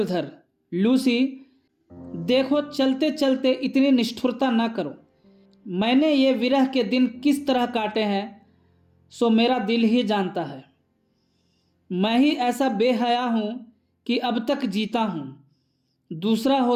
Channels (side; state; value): both; identical; correlation 1.00